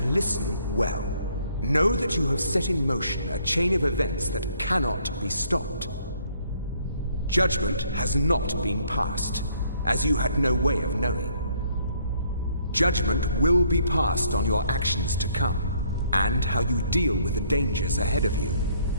listen well. Know that you have set in motion a chain of events that cannot be stopped. Judgment has not been passed, as you had no way of knowing. Judgment will be passed on your actions to come, and how you deal with the dangers ahead of you.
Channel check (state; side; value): inverted; both; correlation -0.65